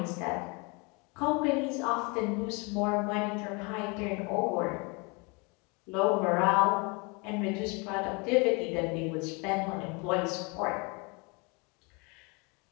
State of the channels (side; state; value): right; quieter; 30.1 dB